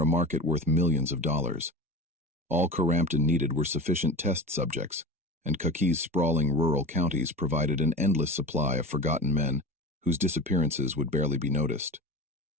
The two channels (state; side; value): normal; both; correlation 0.30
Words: market worth millions of dollars. All Crampton needed were sufficient test subjects, and Kentucky's sprawling rural counties provided an endless supply of forgotten men whose disappearances would barely be noticed.